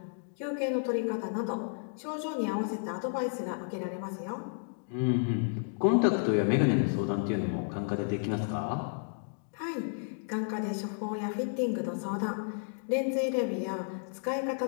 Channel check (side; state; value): right; silent; digital silence